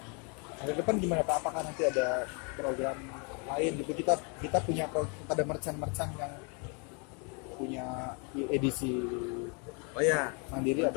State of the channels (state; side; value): quieter; right; 34.9 dB